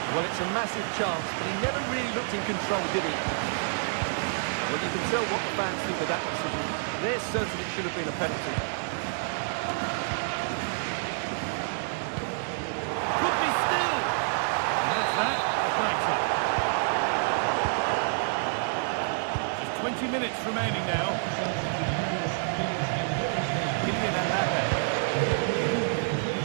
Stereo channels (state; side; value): silent; left; 59 dB below the other